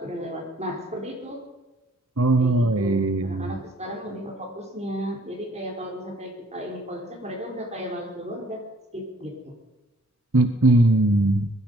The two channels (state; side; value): normal; both; correlation 0.60